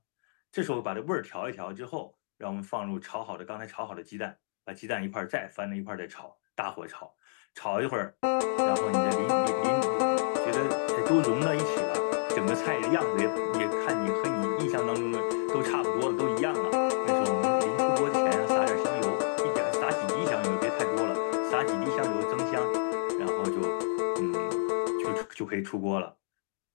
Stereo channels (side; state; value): right; silent; digital silence